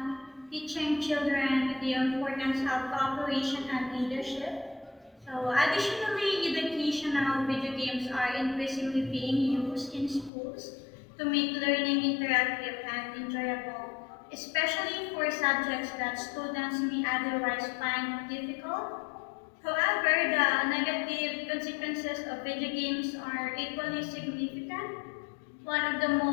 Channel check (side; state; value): right; drops out; at 10.3 s